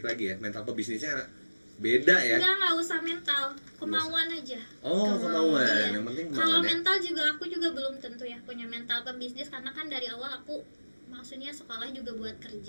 lagi ya mental pebisnisnya beda ya. Nggak usah mental, kemauan aja. Oh kemauan Iya. yang penting Kalau kemauan ya. mental juga aku juga belum tentu ya punya mental pembisnis karena kan dari awal aku maksudnya sekolah juga buat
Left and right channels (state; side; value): inverted; both; correlation -1.00